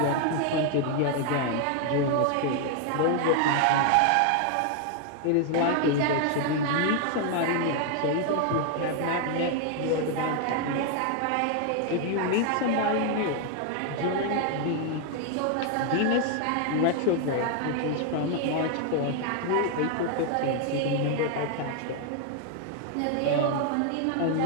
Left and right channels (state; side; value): different; both; correlation 0.00